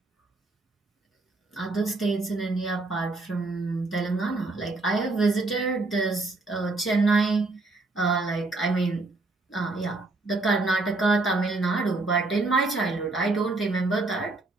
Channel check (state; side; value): quieter; left; 3.3 dB